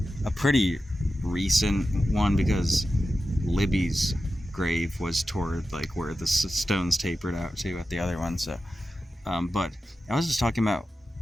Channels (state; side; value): normal; both; correlation 0.92